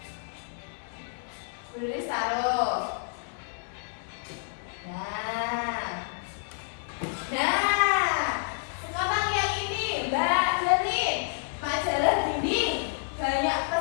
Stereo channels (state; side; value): silent; right; digital silence